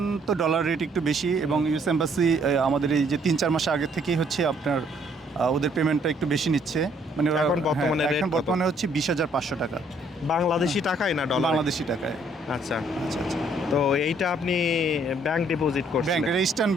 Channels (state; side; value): normal; both; correlation 0.65